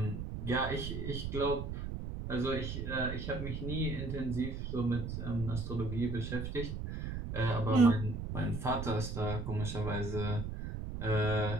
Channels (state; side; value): noise; right; rumble, 5 dB below the sound